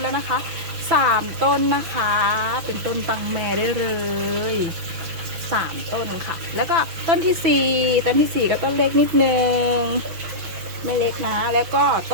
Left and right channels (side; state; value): left; late; 6.1 ms